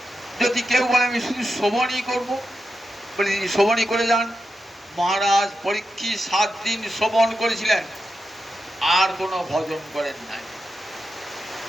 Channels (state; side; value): normal; both; correlation 0.89